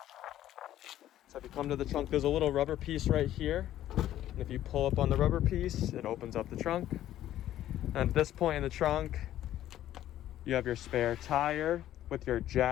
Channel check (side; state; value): right; quieter; 12.7 dB